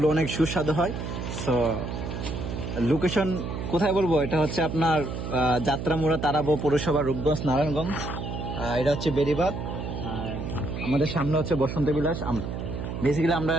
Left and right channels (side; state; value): right; noise; hum, 5 dB below the sound